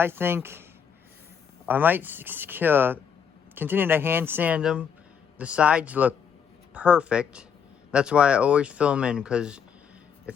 think. I might continue to hand sand them. The sides look perfect. That's why I always fill them in, because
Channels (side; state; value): right; quieter; 7.3 dB